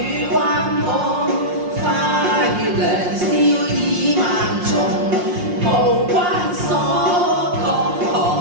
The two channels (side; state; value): left; late; 5.6 ms